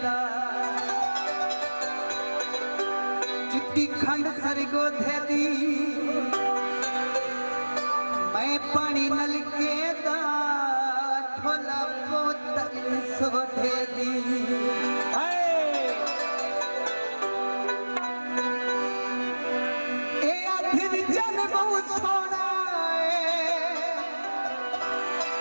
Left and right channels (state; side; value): inverted; both; correlation -1.00